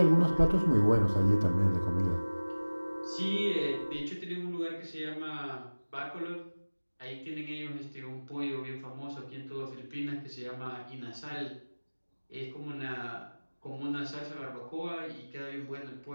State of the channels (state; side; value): inverted; both; correlation -1.00